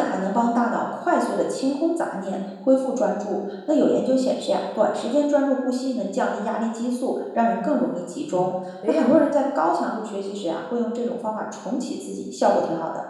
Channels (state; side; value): identical; both; correlation 1.00